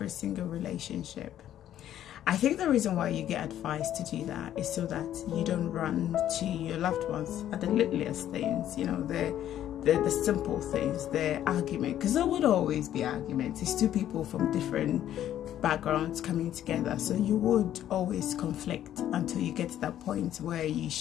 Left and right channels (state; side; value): quieter; right; 11.5 dB